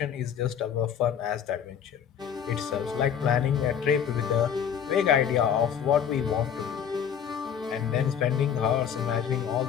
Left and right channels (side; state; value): right; quieter; 8.3 dB